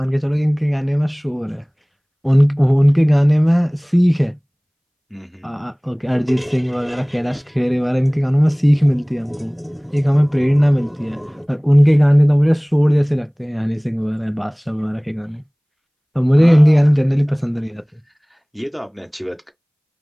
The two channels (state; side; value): identical; both; correlation 1.00